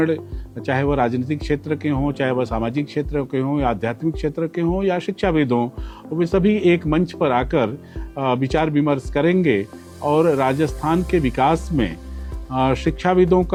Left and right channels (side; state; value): both; identical; correlation 1.00